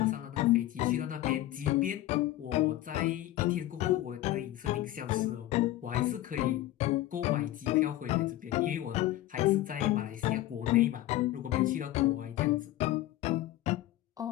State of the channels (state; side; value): quieter; right; 15.1 dB